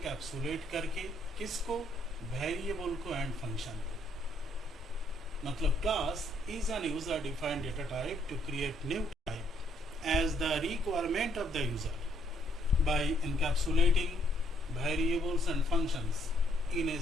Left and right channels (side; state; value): both; normal; correlation 0.69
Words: करके, किसको, वेरिएबल को एंड फंक्शन को। मतलब class is an user defined data type to create new type as the requirement of the user by encapsulating variables and functions in a